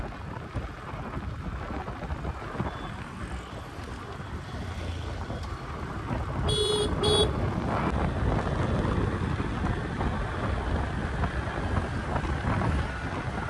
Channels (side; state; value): both; identical; correlation 1.00